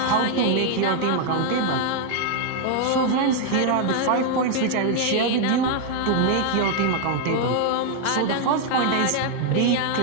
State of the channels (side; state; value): both; different; correlation 0.00